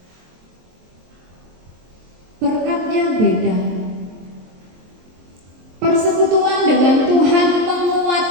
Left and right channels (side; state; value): left; late; 23 ms